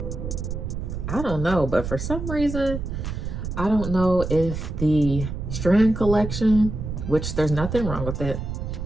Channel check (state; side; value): noise; right; rumble, 5 dB below the sound